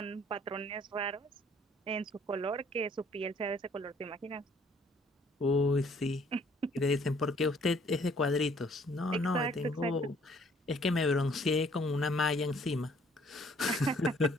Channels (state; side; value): normal; both; correlation 0.61